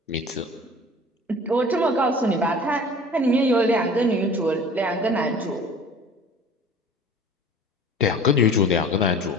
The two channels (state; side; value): normal; both; correlation 0.44